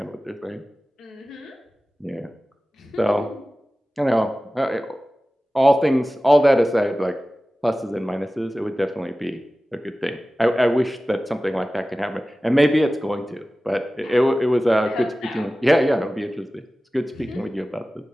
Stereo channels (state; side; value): normal; both; correlation 0.96